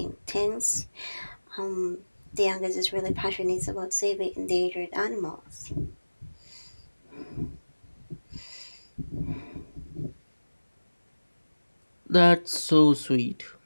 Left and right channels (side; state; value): both; inverted; correlation -1.00